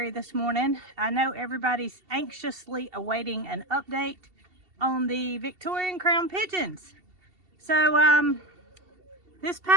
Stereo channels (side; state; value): left; late; 2.7 ms